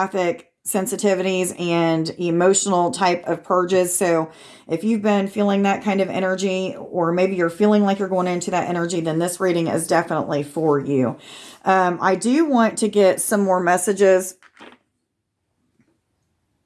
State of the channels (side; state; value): both; identical; correlation 1.00